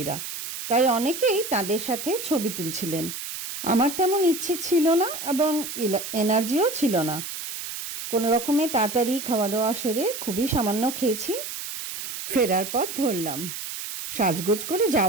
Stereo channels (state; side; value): noise; right; hiss, 7 dB below the sound